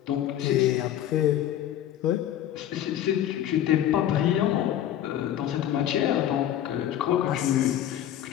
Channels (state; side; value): quieter; right; 11.4 dB